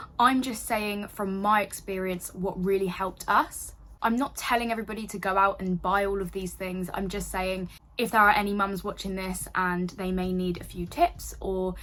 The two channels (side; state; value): both; identical; correlation 1.00